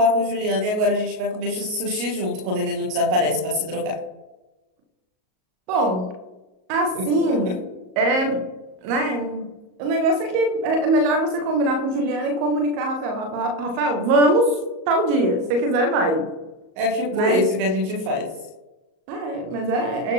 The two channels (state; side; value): late; left; 38 ms